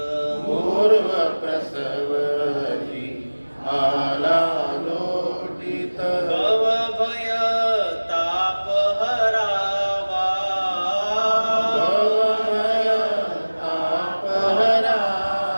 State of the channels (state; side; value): inverted; both; correlation -1.00